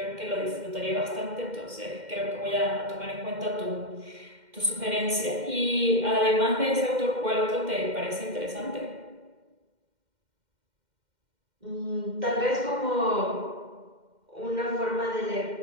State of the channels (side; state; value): left; late; 2.1 ms